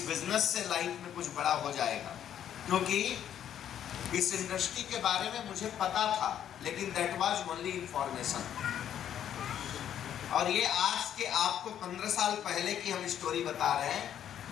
बिजनेस से लाइफ में कुछ बड़ा हो जाएगा, क्योंकि इस इंडस्ट्री के बारे में मुझे पता था, लेकिन दैट वाज ओनली इंफॉर्मेशन। और ये आज के आपको 15 साल पहले की हम स्टोरी बता रहे हैं,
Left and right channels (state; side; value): quieter; right; 10.1 dB